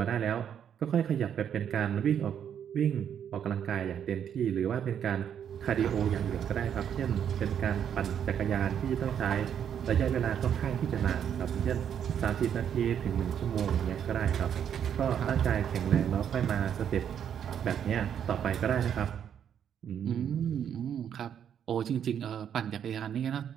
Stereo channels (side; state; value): left; quieter; 8.8 dB